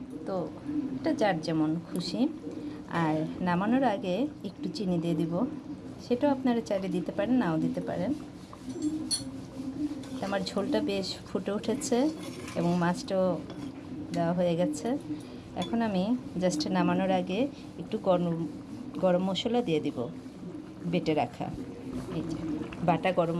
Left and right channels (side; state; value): both; identical; correlation 1.00